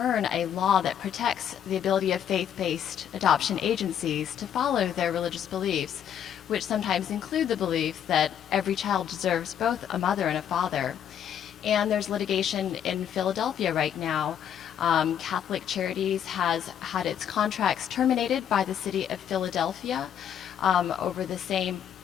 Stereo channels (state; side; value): quieter; right; 9.3 dB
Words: a law that protects the ability of faith-based adoption agencies to follow their religious beliefs, which sometimes include the belief that every child deserves both a mother and a father. And there's litigation in Philadelphia right now. Catholic Charities has had its contracts terminated by the city of Philadelphia over the same